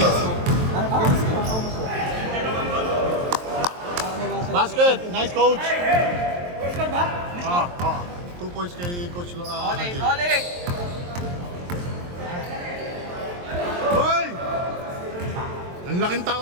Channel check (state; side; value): late; left; 23 ms